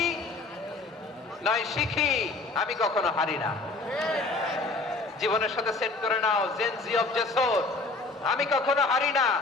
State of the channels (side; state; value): right; quieter; 3.4 dB